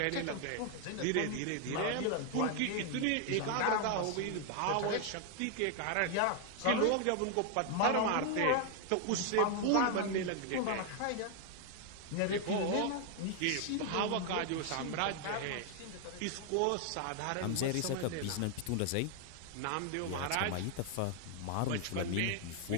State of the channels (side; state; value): both; different; correlation 0.00